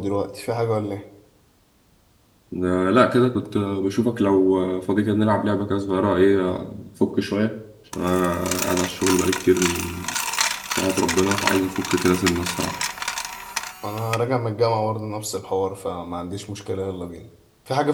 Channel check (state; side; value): identical; both; correlation 1.00